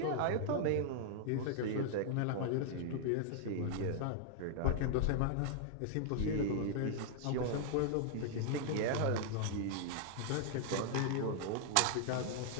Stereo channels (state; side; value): different; both; correlation 0.00